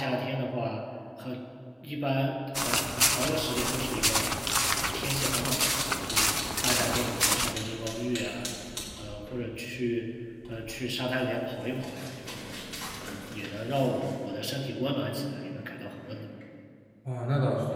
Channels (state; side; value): identical; both; correlation 1.00